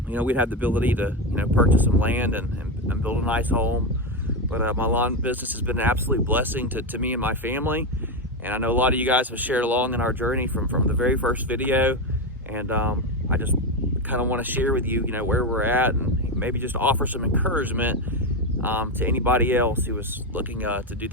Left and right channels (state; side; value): normal; both; correlation 0.12